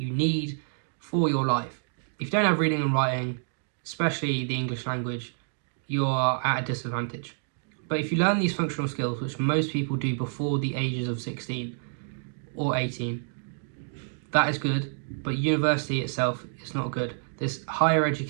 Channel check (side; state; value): left; silent; digital silence